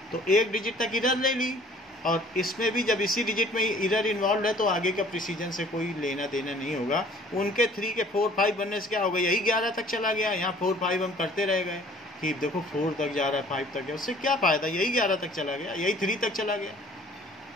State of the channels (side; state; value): both; normal; correlation 0.53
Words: तो 1 डिजिट तक इधर ले ली, और इसमें भी जब इसी डिजिट में एरर इन्वॉल्व है तो आगे का प्रिसीजन से कोई लेना देना नहीं होगा। उनके 3 के 4 5 बनने से क्या होगा, यही 11 तक चला गया। यहाँ 4 5 हम करते रह गए कि देखो 4 तक जा रहा है, 5 तक गया, उससे क्या फ़ायदा, यही 11 तक चला गया, यही 3 तक चला गया।